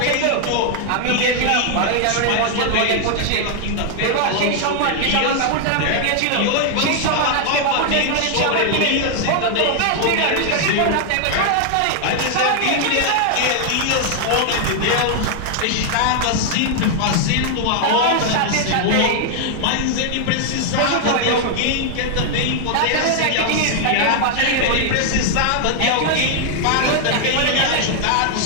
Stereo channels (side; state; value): both; different; correlation 0.00